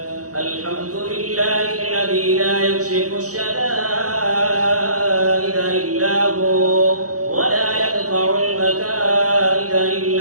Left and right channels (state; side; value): late; left; 0.66 ms